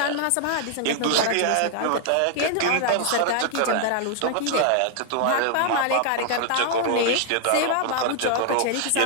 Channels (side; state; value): both; different; correlation 0.00